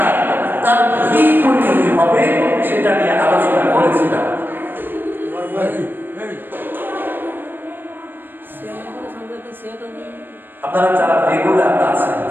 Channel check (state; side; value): late; left; 0.095 ms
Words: তার কি পরিণতি হবে সেটা নিয়ে আলোচনা করেছিলাম। আপনারা যারা রেগুলার আছেন